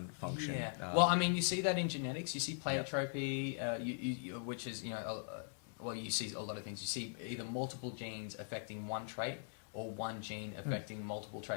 function. Yeah. Well, I mean, you see that in genetics. You see pleiotropy, which is well, you see a lot of things. You see either multiple genes affecting one trait or one gene affecting multiple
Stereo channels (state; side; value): silent; right; digital silence